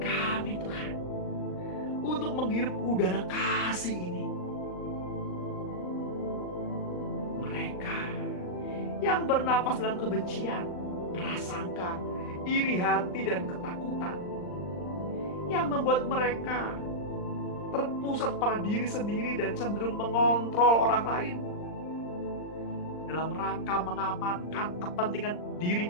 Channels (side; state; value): right; late; 39 ms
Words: Tuhan untuk menghirup udara kasih ini. Mereka yang bernapas dalam kebencian, prasangka, iri hati dan ketakutan, yang membuat mereka terpusat pada diri sendiri dan cenderung mengontrol orang lain dalam rangka mengamankan kepentingan diri